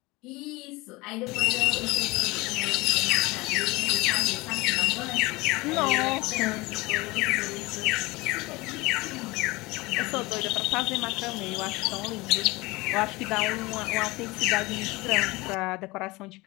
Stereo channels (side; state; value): right; quieter; 22.4 dB